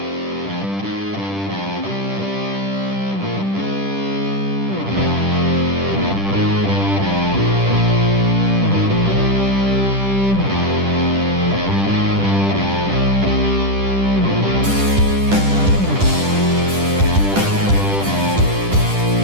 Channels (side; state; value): left; late; 10 ms